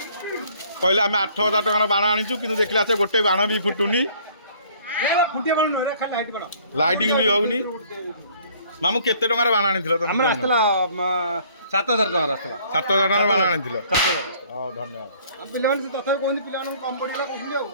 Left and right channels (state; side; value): inverted; both; correlation -0.58